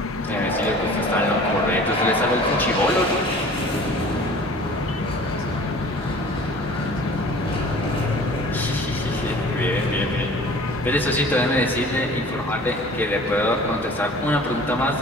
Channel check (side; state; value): both; normal; correlation 0.46